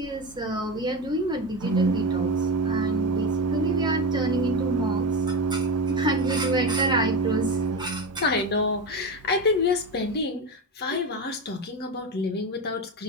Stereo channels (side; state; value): both; normal; correlation 0.20